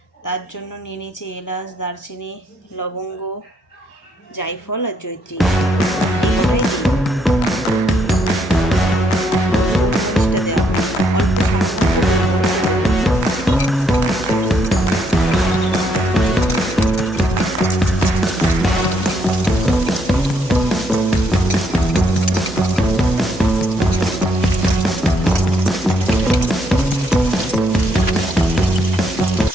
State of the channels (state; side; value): normal; both; correlation 0.73